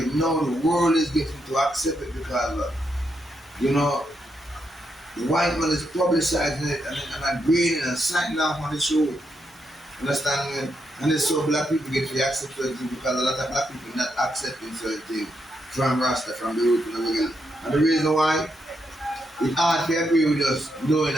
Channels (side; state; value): both; normal; correlation 0.81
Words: me? Now the world is getting to accept it because You know, the white man is publicizing it and agreeing and signing off on the show. Understand me? And it's so black people get to accept certain things because a lot of black people not accepting certain things from Rasta, from the root and the regular. And the reason why, it's hard to agree with us knowing